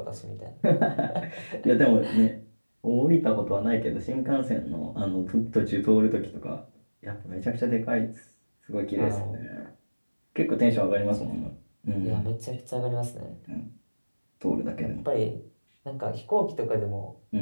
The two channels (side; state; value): both; inverted; correlation -1.00